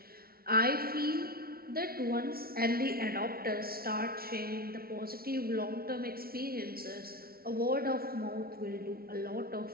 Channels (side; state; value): left; late; 0.44 ms